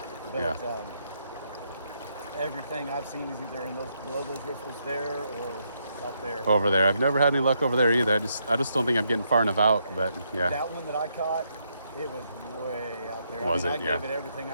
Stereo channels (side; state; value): both; inverted; correlation -0.77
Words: But everything I've seen is either below those riffles there or up there. Over there. I've never had any luck over there either. I just don't think I'm getting far enough out, but yeah. That one that I caught, it was way out there. I gave it everything